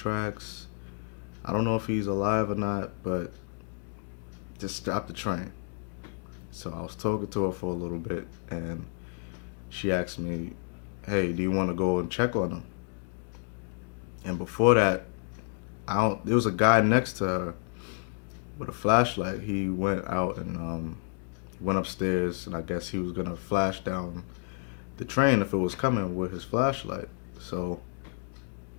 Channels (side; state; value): right; silent; 58 dB below the other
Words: I don't know if he's alive or not, but just stop the train. So I was talking to her for a little bit, and she asked me, hey, do you want to go and check on him? And before that, I don't. There was a guy next to her with a flashlight. He went out and went upstairs, and I guess he was gonna flash down the train if it was coming with his flashlight. So,